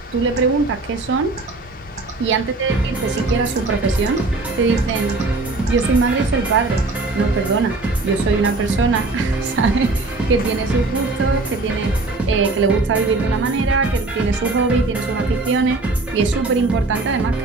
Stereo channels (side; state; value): left; quieter; 3.3 dB